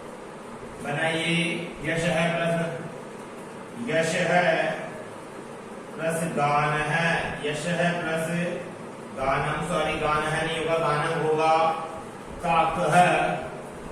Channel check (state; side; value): identical; both; correlation 1.00